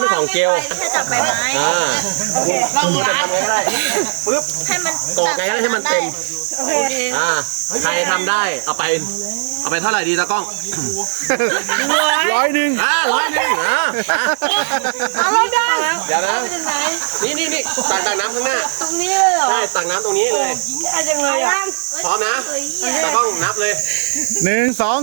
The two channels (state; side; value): silent; left; digital silence